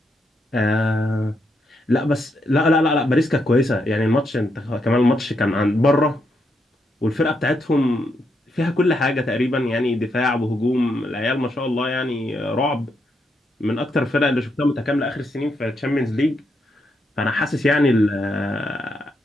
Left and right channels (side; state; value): both; normal; correlation 0.79